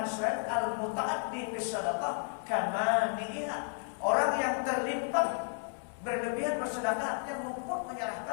lain al-muta'addi bis sadaqah kamaniha. Orang yang terlipat berlebihan bersedekah artinya luput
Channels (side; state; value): right; silent; 55 dB below the other